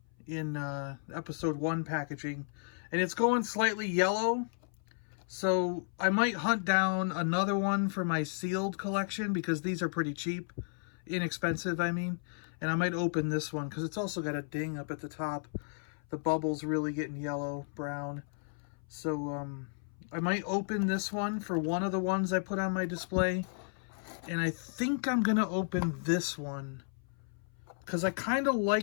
in episode 1 packaging. And it's going slightly yellow, so I might hunt down another one for my sealed collection, because these are pretty cheap, inexpensive, I mean. And I might open this one, because it's also got a ding up at the top. The bubble's really getting yellow, brown. So I might open this one for one of the ones I put on my display. And I think I'm going to open this one, because I kind of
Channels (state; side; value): silent; right; 55 dB below the other